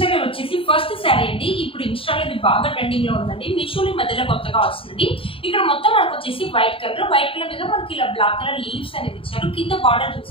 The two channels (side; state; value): right; late; 0.26 ms